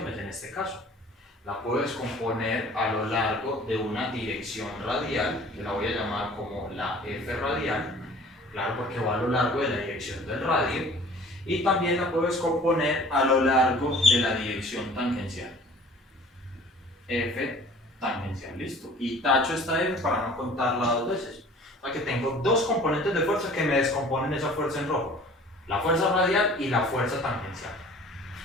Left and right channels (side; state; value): both; normal; correlation 0.48